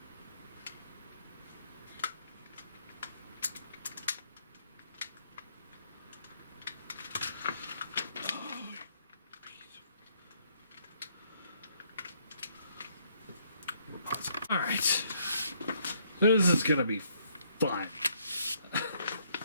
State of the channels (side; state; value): both; inverted; correlation -0.69